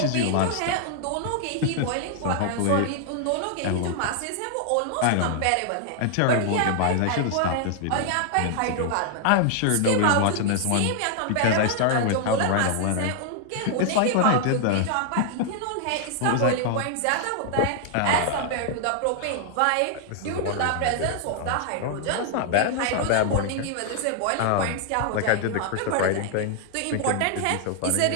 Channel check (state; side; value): different; both; correlation 0.00